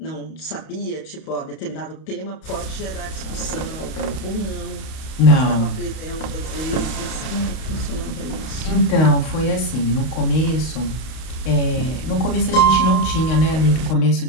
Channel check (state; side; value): late; right; 32 ms